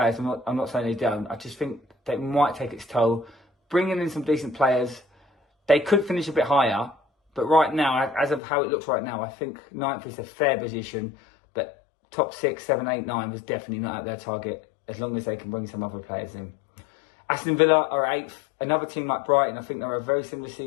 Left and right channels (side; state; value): right; drops out; at 8.4 s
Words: I'm not saying they don't. I just think they might take its toll. Bringing in some decent players, they could finish a bit higher. But right now, as of how it looks right now, I think 9th is a fair position. But top 6, 7, 8, 9 was definitely not at their target, as long as they can bring some other players in. Aston Villa are 8th. Another team like Brighton, I think they're a very similar